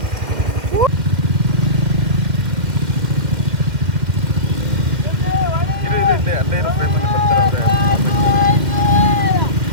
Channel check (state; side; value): late; left; 2.0 ms